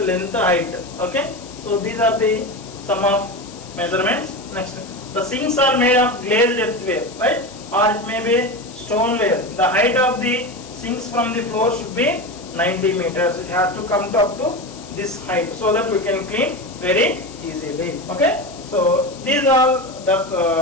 height. Okay. So these are the sum of measurements. Next, the sinks are made of glazed earthenware, right? Or it may be stoneware. The height of the sinks from the floor should be 90 meters. It has to come up to this height so that we can clean very easily. Okay. So these are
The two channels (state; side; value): noise; left; hiss, 19 dB below the sound